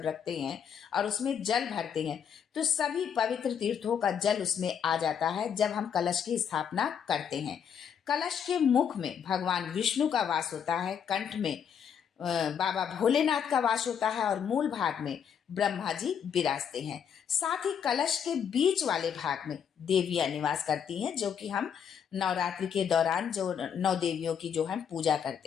रखते हैं और उसमें जल भरते हैं तो सभी पवित्र तीर्थों का जल उसमें आ जाता है जब हम कलश की स्थापना करते हैं। कलश के मुख में भगवान विष्णु का वास होता है, कंठ में बाबा भोलेनाथ का वास होता है और मूल भाग में ब्रह्मा जी विराजते हैं। साथ ही कलश के बीच वाले भाग में देवियां निवास करती हैं, जो कि हम नवरात्रि के दौरान जो 9 देवियों की जो हम पूजा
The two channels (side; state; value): right; quieter; 7.8 dB